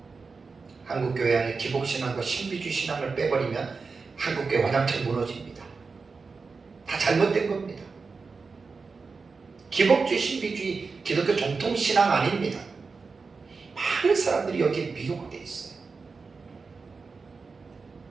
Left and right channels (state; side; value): quieter; left; 4.6 dB